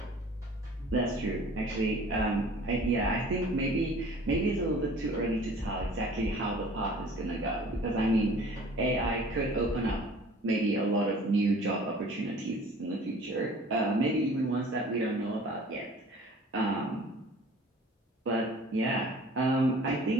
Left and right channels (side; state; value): both; normal; correlation 0.48